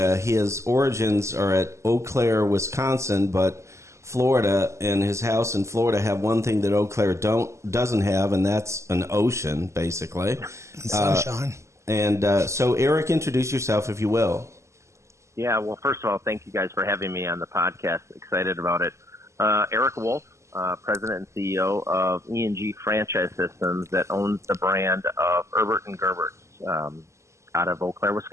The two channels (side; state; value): left; late; 0.14 ms